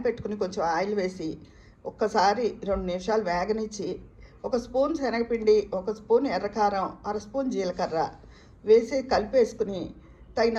పెట్టుకుని కొంచెం ఆయిల్ వేసి ఒక్కసారి 2 నిమిషాలు వేగనిచ్చి ఒక స్పూన్ శనగపిండి, ఒక స్పూన్ ఎర్రకారం, అర స్పూన్ జీలకర్ర వేసి కలిపేసుకుని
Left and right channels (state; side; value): identical; both; correlation 1.00